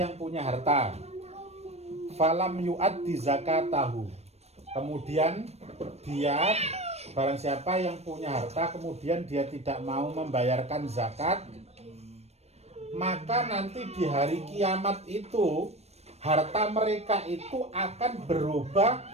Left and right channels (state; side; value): late; left; 0.31 ms